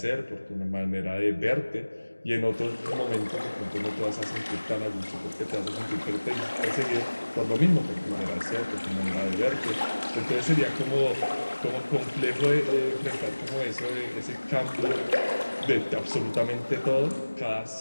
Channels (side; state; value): both; inverted; correlation -1.00